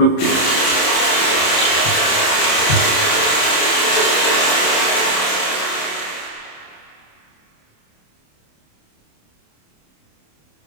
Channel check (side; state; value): right; late; 27 ms